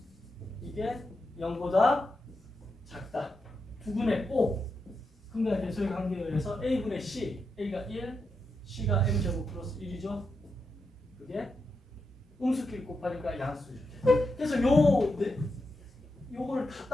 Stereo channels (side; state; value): both; normal; correlation 0.86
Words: 이게 0보다 작다. 두근의 O 근과 대소의 관계에 의해서 a분의 c a가 1 c가 m제곱 플러스 1이죠. 그게 음수끼리 곱하니까 양수죠. 그래서 요거를 다